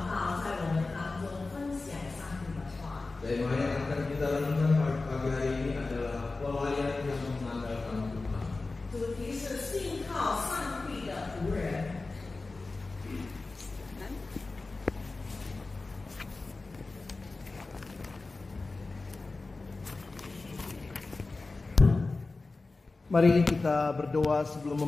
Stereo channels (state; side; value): quieter; right; 3.5 dB